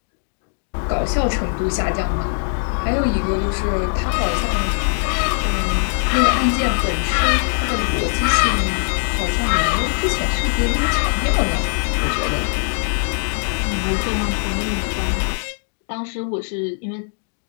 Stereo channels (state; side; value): silent; right; digital silence